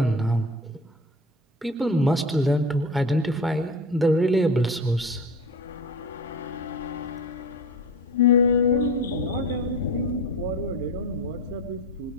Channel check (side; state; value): both; normal; correlation 0.32